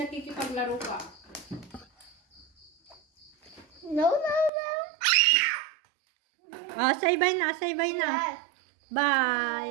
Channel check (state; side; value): drops out; left; at 4.5 s